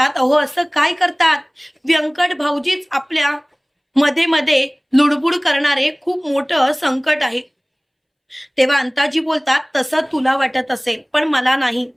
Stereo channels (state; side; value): identical; both; correlation 1.00